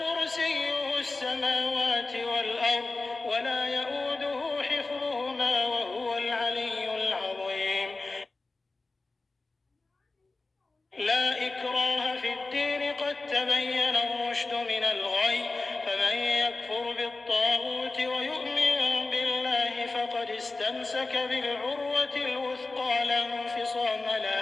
السماوات والأرض ولا يؤوده حفظهما وهو العلي العظيم لا إكراه في الدين قد تبين الرشد من الغي فمن يكفر بالطاغوت ويؤمن بالله فقد استمسك بالعروة الوثقى لا انفصام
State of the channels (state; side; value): quieter; right; 3.4 dB